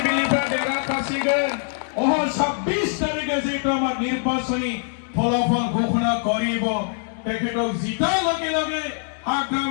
देरहाखासिगोन 26 तारिखे जेहेतु आमार निर्वाचनी फलाफल घोषणा करिब तेखेतक जितार लगे लगे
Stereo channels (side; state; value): right; silent; digital silence